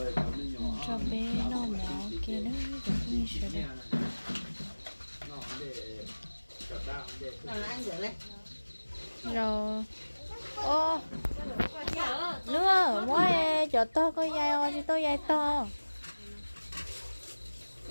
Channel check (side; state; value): both; inverted; correlation -1.00